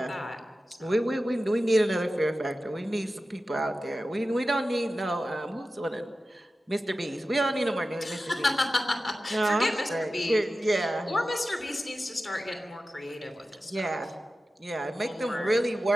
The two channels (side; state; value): both; normal; correlation 0.94